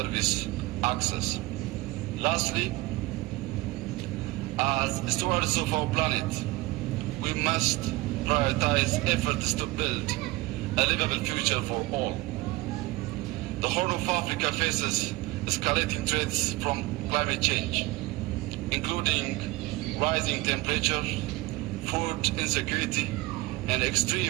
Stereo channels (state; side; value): quieter; left; 20.8 dB